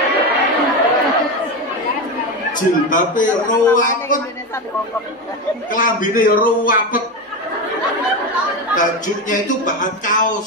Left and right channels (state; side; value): normal; both; correlation 0.17